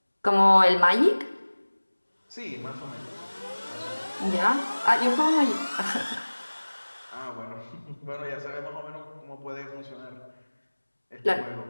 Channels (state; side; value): inverted; both; correlation -1.00